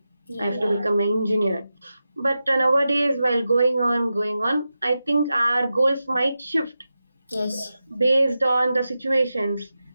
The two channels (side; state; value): both; inverted; correlation -0.91